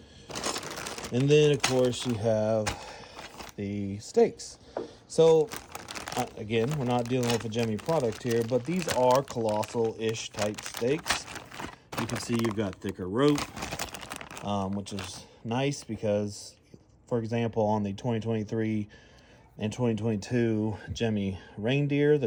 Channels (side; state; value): both; identical; correlation 1.00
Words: And then of course you have the stakes. So again, we're not dealing with a Jemmy product here, but these are colossal-ish type stakes. You can see you've got thicker rope, which is nice because, for example, on the 2023 and 2022 Jemmy reindeer, the